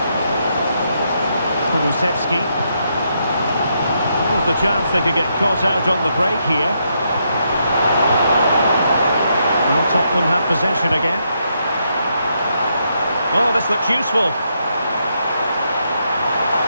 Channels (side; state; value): both; inverted; correlation -0.78